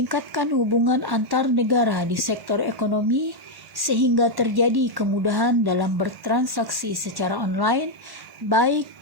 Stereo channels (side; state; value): left; late; 1.1 ms